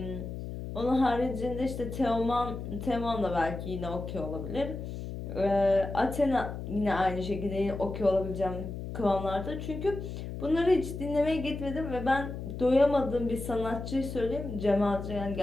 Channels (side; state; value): left; noise; hum, 7 dB below the sound